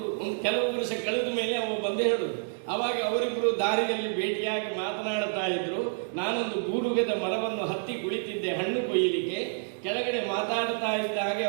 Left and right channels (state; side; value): silent; left; digital silence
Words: ಕೆಲವು ವರ್ಷ ಕಳೆದ ಮೇಲೆ ಅವ ಬಂದೇ ಹೇಳುದು. ಅವಾಗ ಅವರಿಬ್ಬರು ದಾರಿಯಲ್ಲಿ ಭೇಟಿಯಾಗಿ ಮಾತನಾಡ್ತಾ ಇದ್ರು. ನಾನೊಂದು ಗೂಡುಗದ ಮರವನ್ನು ಹತ್ತಿ ಕುಳಿತಿದ್ದೆ ಹಣ್ಣು ಕೊಯ್ಯಲಿಕ್ಕೆ. ಕೆಳಗಡೆ ಮಾತಾಡ್ತಾ ಇದ್ದ ಹಾಗೆ